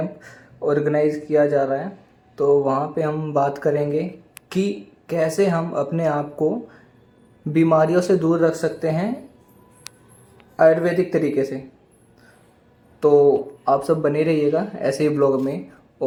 ऑर्गेनाइज किया जा रहा है। तो वहाँ पे हम बात करेंगे कि कैसे हम अपने आप को बीमारियों से दूर रख सकते हैं आयुर्वेदिक तरीके से। तो आप सब बने रहिएगा ऐसे ही ब्लॉग में।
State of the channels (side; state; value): both; identical; correlation 1.00